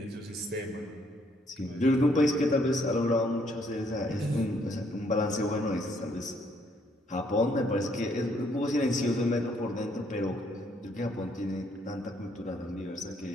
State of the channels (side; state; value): both; normal; correlation 0.69